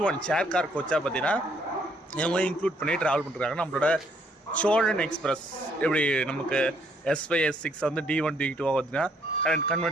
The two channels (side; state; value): both; normal; correlation 0.68